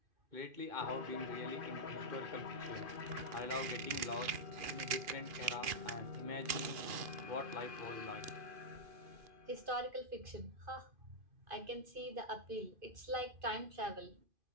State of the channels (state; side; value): late; left; 2.5 ms